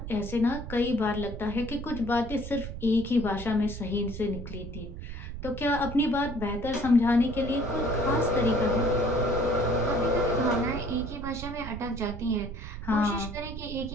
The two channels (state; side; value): noise; right; rumble, 9 dB below the sound